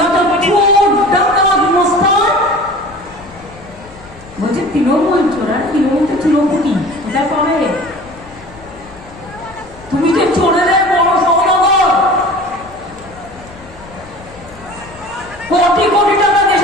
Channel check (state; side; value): noise; left; rumble, 21 dB below the sound